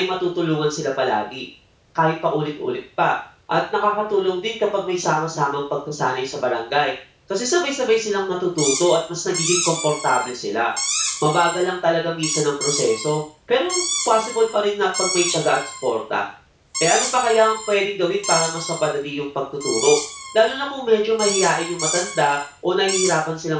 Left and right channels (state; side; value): identical; both; correlation 1.00